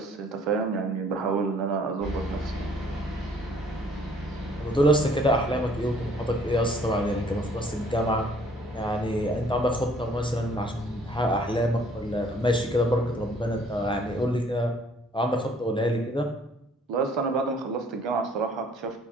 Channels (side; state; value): both; normal; correlation 0.59